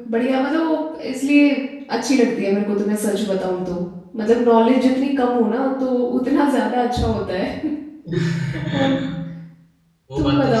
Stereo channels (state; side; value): identical; both; correlation 1.00